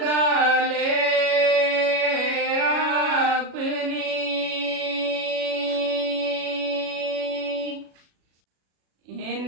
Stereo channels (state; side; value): late; left; 37 ms